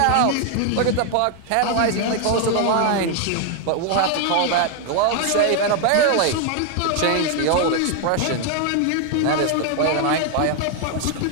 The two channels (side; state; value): both; different; correlation 0.01